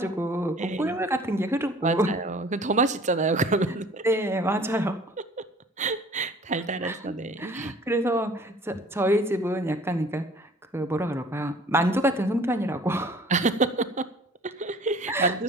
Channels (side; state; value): both; normal; correlation 0.50